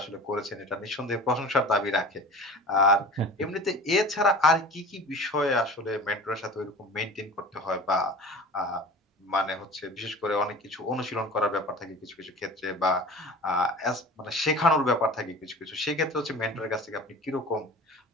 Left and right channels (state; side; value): normal; both; correlation 0.39